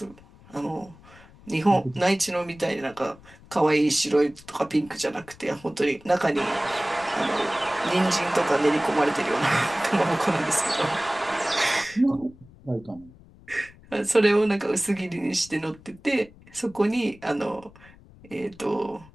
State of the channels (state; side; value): noise; left; rumble, 24 dB below the sound